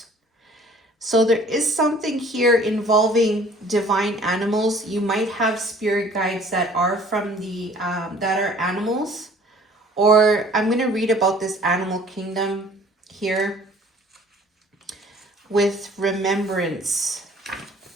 So there is something here involving divine animals. You might have spirit guides that are from the that are animals, or I'm going to read about this animal kingdom here with remembrance.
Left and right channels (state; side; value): normal; both; correlation 0.53